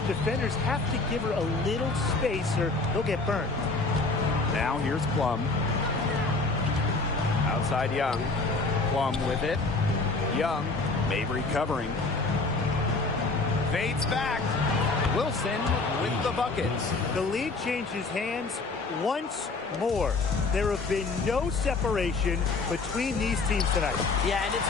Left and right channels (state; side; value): quieter; right; 3.7 dB